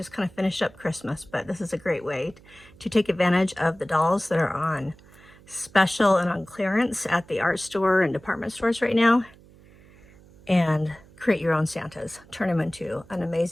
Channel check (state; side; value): noise; right; hum, 25 dB below the sound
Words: kind of finished up Christmas, but this is a great way to take advantage of the dolls that are on special and on clearance at the art store and department stores right now, and create your own Santas. Turn them into an